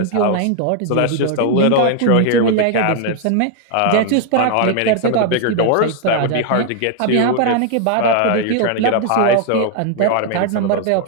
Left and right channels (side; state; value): both; different; correlation 0.00